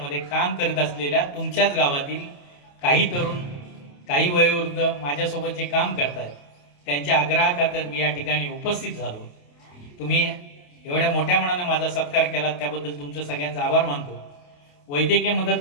काम करत असलेल्या तुमच्याच गावातील काही तरुण, काही वयोवृद्ध माझ्यासोबत जे काम करतात त्यांच्या आग्रहाखातर मी या ठिकाणी उपस्थित झालो. तुम्ही एवढ्या मोठ्या मनाने माझा सत्कार केला त्याबद्दल तुमचं सगळ्यांचा आभार मानतो. वैद्यकीय मदत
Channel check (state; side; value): late; right; 28 ms